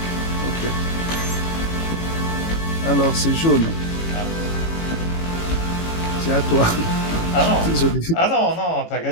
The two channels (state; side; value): late; right; 18 ms